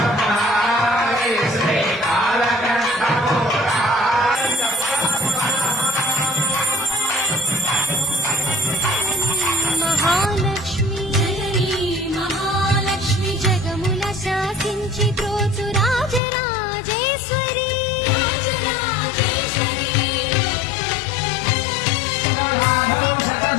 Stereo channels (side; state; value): right; drops out; at 16.2 s